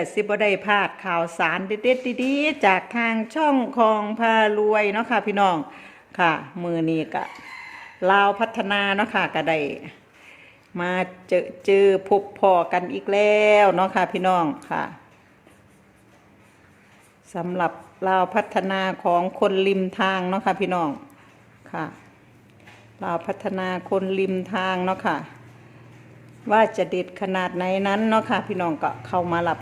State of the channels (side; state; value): both; identical; correlation 1.00